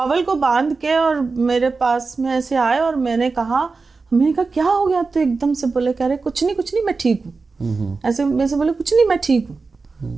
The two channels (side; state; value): left; quieter; 4.2 dB